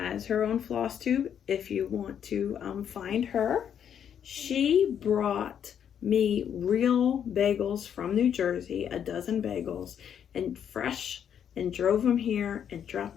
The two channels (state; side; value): quieter; right; 8.7 dB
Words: her own floss tube if you want to find her. She brought me real bagels from New Jersey, a dozen bagels, and fresh, and drove them here and dropped